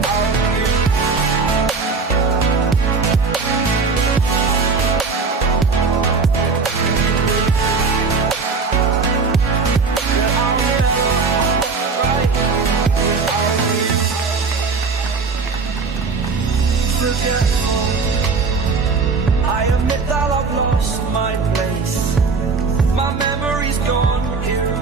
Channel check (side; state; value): left; quieter; 4.6 dB